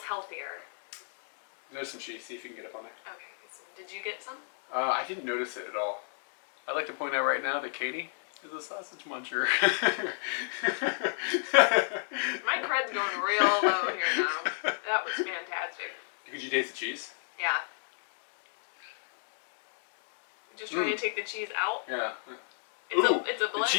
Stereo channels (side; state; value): right; silent; digital silence